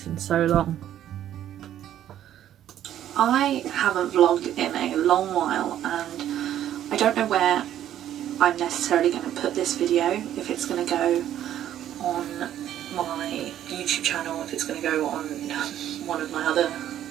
in so long. I haven't vlogged in a long while and I don't know where I'm necessarily going to put this video, if it's going to go on my YouTube channel, if it's going to go on one of my other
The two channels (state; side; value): quieter; left; 11.4 dB